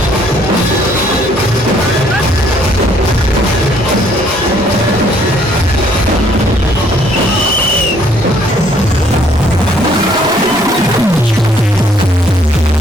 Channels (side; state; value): both; normal; correlation 0.64